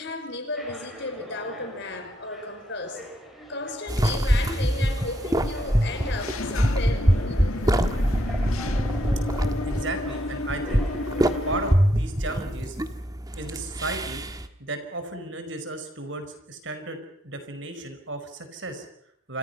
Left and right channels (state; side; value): normal; both; correlation 0.76